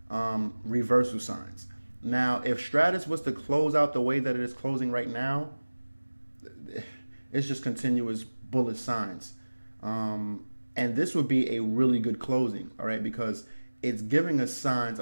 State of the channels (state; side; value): inverted; both; correlation -1.00